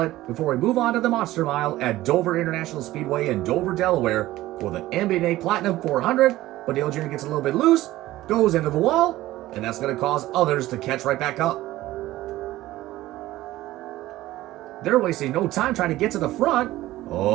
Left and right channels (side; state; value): left; quieter; 16.3 dB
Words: before we move on to the Monster Mile at Dover International Speedway in Dover, Delaware for the NBA Platinum 400. But Dale Jr. gets a little bit loose, goes into the wall, and that's going to cause others to catch right back up. They're wasting no time trying to get to the front.